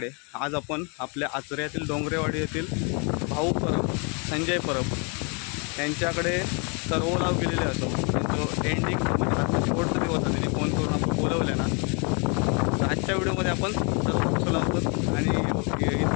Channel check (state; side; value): quieter; right; 34.8 dB